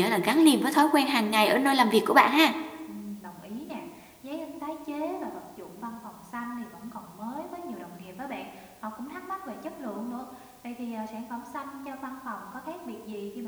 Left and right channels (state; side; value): identical; both; correlation 1.00